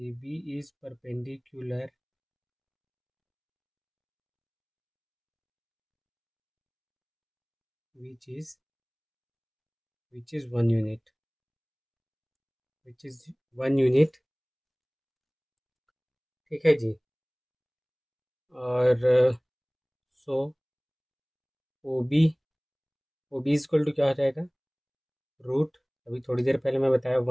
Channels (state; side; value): identical; both; correlation 1.00